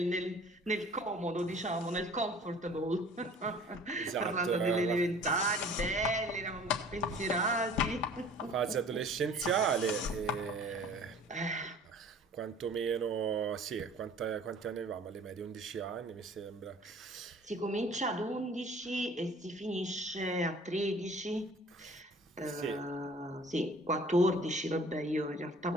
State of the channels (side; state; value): both; normal; correlation 0.49